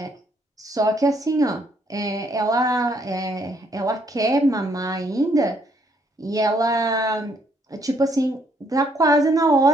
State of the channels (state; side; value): normal; both; correlation 0.69